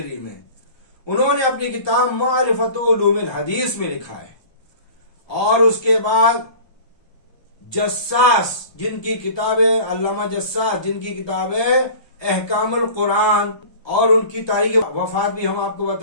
में, उन्होंने अपनी किताब मारिफतुल उलूमिल हदीस में लिखा है। और उसके बाद जस्सास, जिनकी किताब है, अल्लामा जस्सास, जिनकी किताब है अहकामुल कुरान, और उनकी तारीख वफात भी हम आपको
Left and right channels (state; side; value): late; right; 1.3 ms